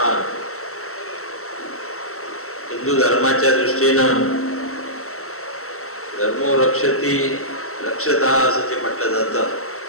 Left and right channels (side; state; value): right; late; 0.63 ms